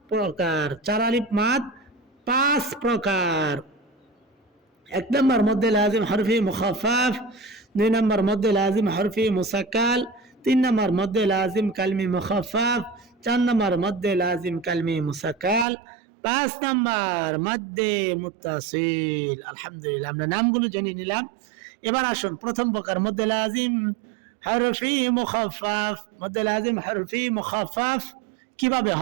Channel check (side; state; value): left; drops out; at 15.7 s